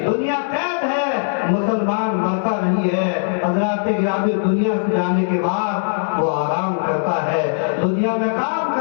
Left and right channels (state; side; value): silent; right; digital silence